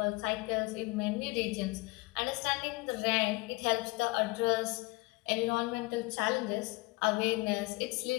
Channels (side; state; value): right; quieter; 23.7 dB